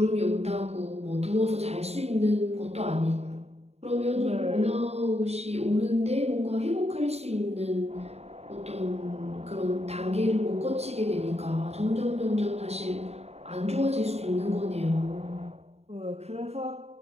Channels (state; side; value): late; left; 0.31 ms